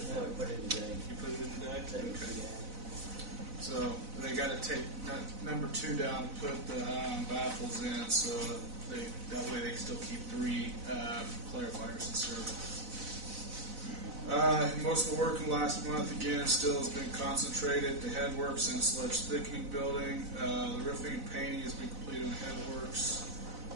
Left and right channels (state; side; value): late; left; 4.0 ms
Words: yet? No, we put it in today. You put it in today? Okay. So they got to take number 2 down and put the baffles in, so that way they can still keep 3 clarifiers in service. Most of the work in the last month, again, still has been concentrated. The headworks and sledge thickening building. The roofing and painting has been completed on the headworks.